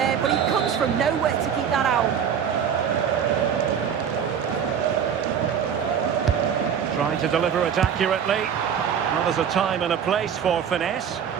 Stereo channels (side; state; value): left; quieter; 7.9 dB